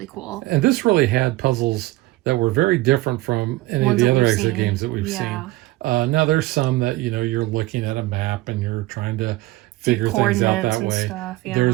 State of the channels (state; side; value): quieter; left; 18.6 dB